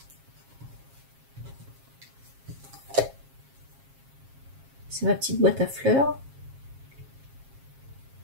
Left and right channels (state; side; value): late; left; 7.4 ms